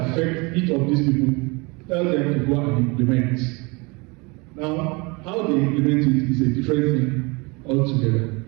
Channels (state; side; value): quieter; left; 27.4 dB